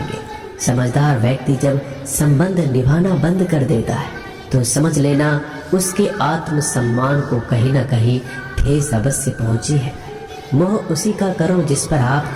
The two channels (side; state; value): both; identical; correlation 1.00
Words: समझदार व्यक्ति जब संबंध निभाना बंद कर देता है तो समझ लेना उसके आत्म सम्मान को कहीं ना कहीं ठेस अवश्य पहुंची है। मोह उसी का करो जिस पर